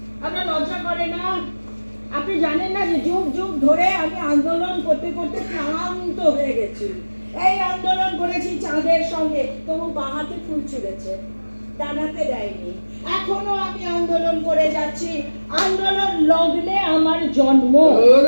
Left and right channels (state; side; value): inverted; both; correlation -1.00